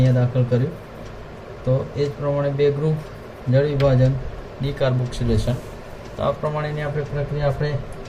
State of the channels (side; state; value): both; identical; correlation 1.00